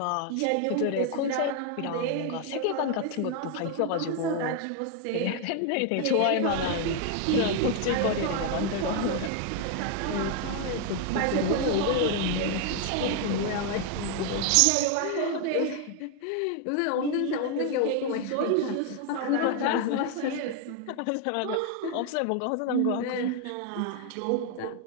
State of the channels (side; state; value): both; different; correlation 0.00